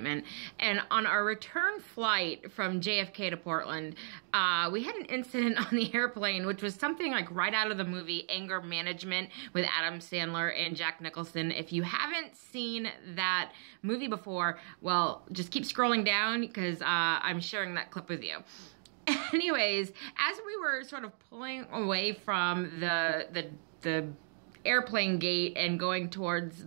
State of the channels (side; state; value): left; silent; 55 dB below the other